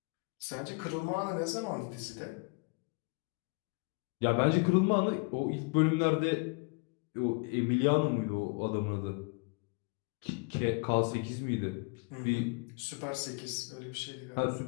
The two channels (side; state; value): right; quieter; 31.9 dB